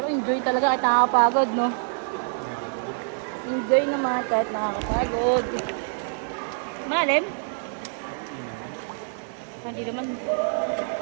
enjoy talaga kahit nakakapagod, no? Enjoy naman kahit nakakapagod. Malalim? Hindi naman.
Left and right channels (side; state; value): left; silent; 61 dB below the other